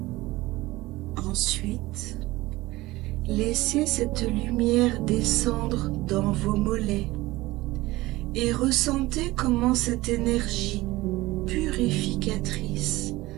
Ensuite, laissez cette lumière descendre dans vos mollets et ressentez comment cette énergie purificatrice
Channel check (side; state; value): left; quieter; 19.2 dB